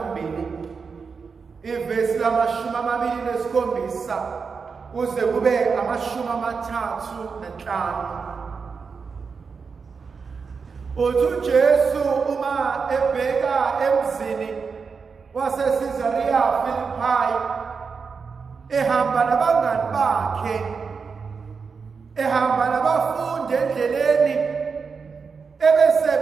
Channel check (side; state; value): left; quieter; 5.3 dB